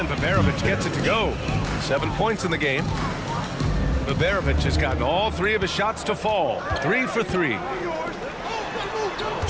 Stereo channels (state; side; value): identical; both; correlation 1.00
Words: Baberovic gets it to go. 7 points in the game. Baberovic has gotten all 3 of his shots to fall. 3 for 3. 2